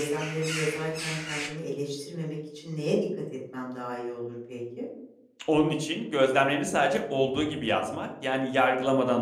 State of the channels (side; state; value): both; identical; correlation 1.00